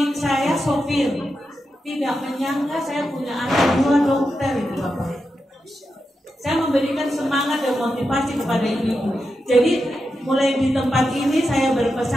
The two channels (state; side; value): normal; both; correlation 0.88